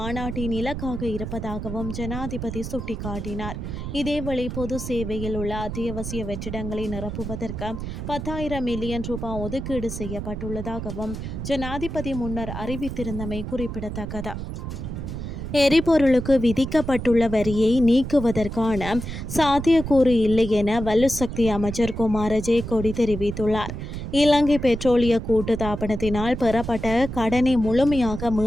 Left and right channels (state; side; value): noise; right; rumble, 6 dB below the sound